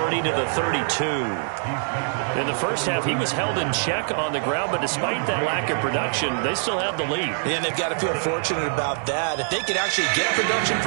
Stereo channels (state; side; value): silent; left; digital silence